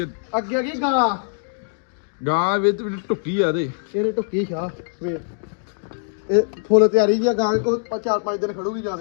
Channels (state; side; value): silent; right; digital silence